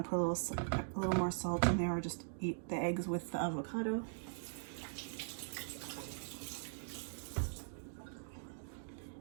to put a little more salt in there, or just eat the eggs with the avocado.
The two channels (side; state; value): left; silent; digital silence